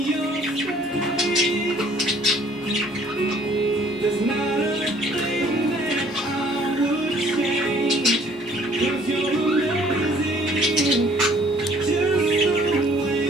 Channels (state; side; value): normal; both; correlation 0.58